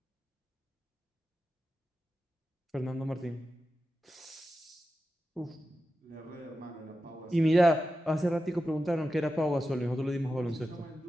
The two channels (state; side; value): normal; both; correlation 0.91